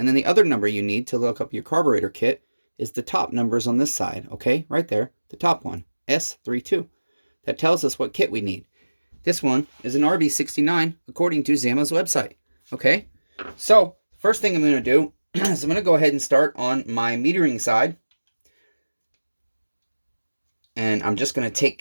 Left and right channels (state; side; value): inverted; both; correlation -1.00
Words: then the other number you need to look up your carburetor kit is the top numbers on this side, okay? Right there, the top one, S32. That tells us what kit we need. This one is an RB69 according to Zama's website, okay? So, first thing I'm going to do is I'm going to go ahead and start on my metering side. And I'm just going to